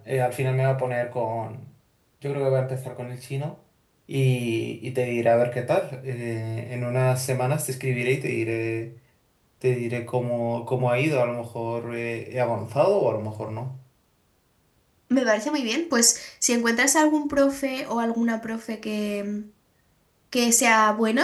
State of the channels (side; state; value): both; identical; correlation 1.00